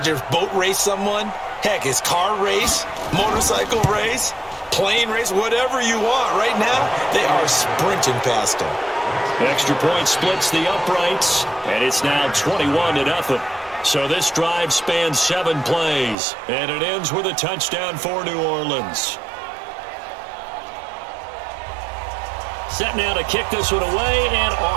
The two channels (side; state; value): left; drops out; at 16.2 s